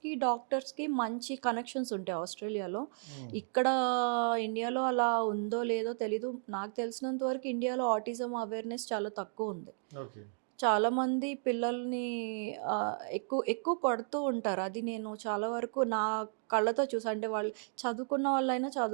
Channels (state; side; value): silent; left; 55 dB below the other